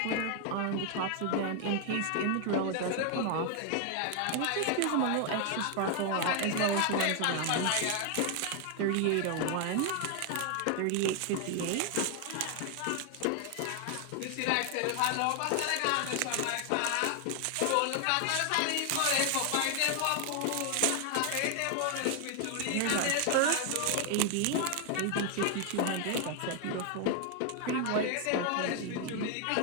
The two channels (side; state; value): both; different; correlation 0.00